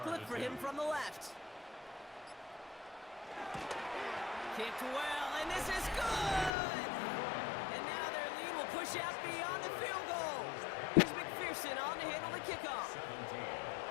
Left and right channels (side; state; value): right; drops out; at 6.5 s